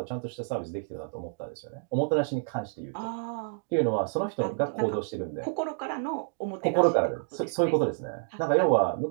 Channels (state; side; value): silent; left; digital silence